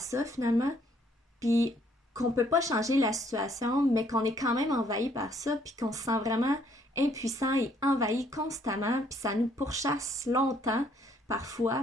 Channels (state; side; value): normal; both; correlation 0.65